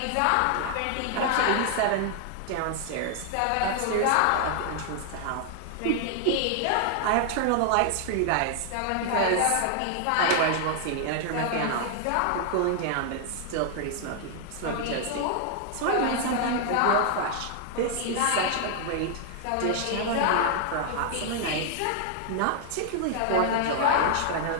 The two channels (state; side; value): different; both; correlation 0.00